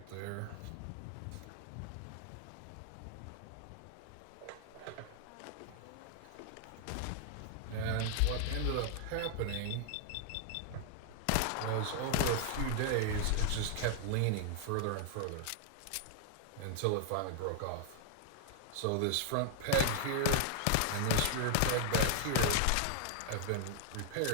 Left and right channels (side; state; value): both; different; correlation 0.00